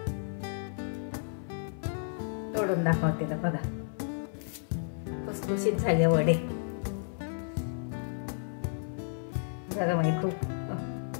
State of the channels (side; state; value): right; silent; 56 dB below the other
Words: तोडून दाखवते ना, बघा खुसखुशीत झाले वडे. गरम आहे खूप.